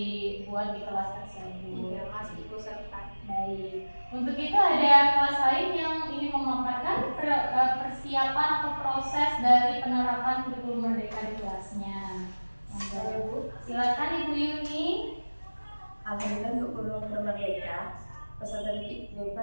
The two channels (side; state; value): both; inverted; correlation -1.00